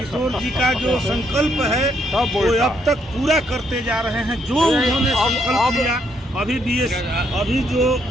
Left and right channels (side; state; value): both; normal; correlation 0.73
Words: जी का जो संकल्प है वो अब तक पूरा करते जा रहे हैं। जो उन्होंने संकल्प लिया, अभी जो